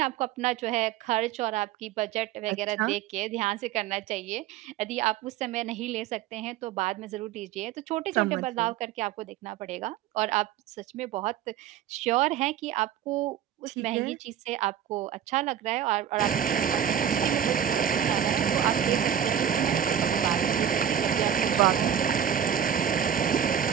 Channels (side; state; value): left; quieter; 9.5 dB